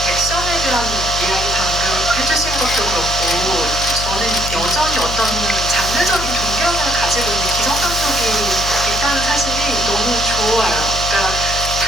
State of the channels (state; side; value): noise; left; hum, 7 dB below the sound